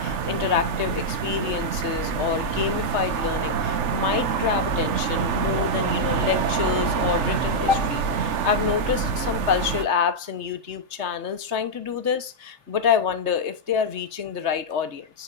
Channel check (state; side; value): late; left; 3.3 ms